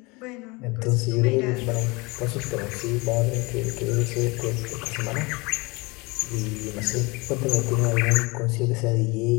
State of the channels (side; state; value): right; quieter; 25.7 dB